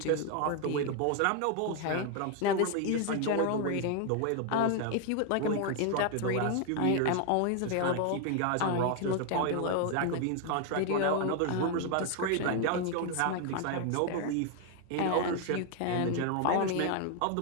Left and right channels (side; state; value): both; different; correlation 0.00